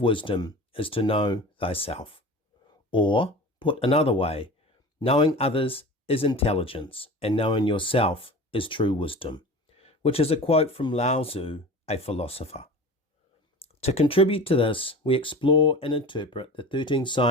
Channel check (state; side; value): normal; both; correlation 0.36